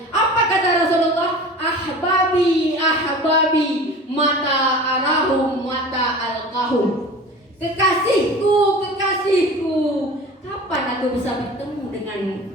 Apa kata Rasulullah? Ahbabi, ahbabi, mata arahum, mata alqahum. Kekasihku, kekasihku, kapan aku bisa bertemu denganmu?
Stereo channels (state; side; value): normal; both; correlation 0.39